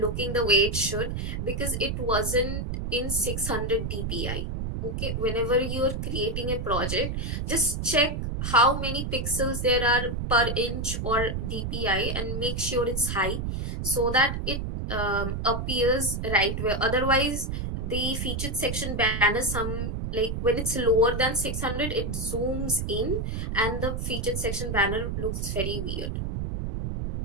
the way it should, because it wasn't in 600 dpi. Okay, whenever you're creating a project, just check how many pixels there are per inch or dpi and make sure it's high, so that it appears right way. Otherwise the featured section banner, some like when it's lower than 600, it zooms in and the featured section banner looks very weird.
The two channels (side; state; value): right; noise; rumble, 3 dB below the sound